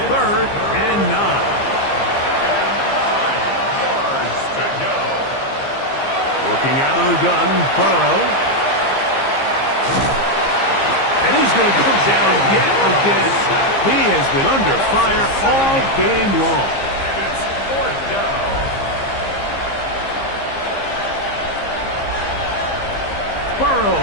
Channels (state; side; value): late; right; 15 ms